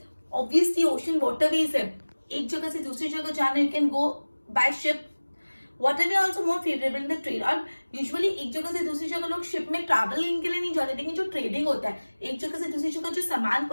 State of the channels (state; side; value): inverted; both; correlation -1.00